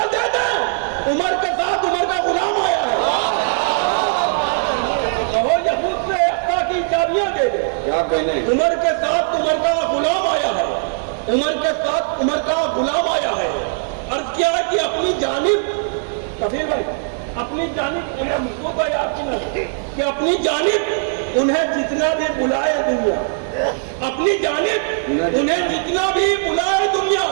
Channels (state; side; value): silent; left; digital silence